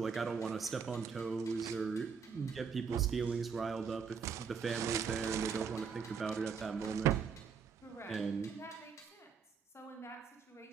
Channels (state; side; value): quieter; left; 6.2 dB